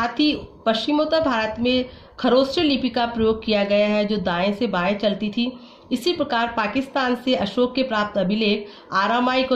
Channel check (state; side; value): identical; both; correlation 1.00